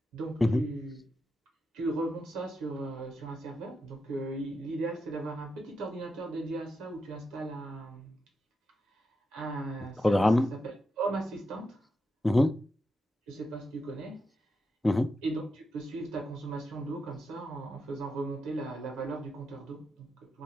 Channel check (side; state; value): both; normal; correlation 0.86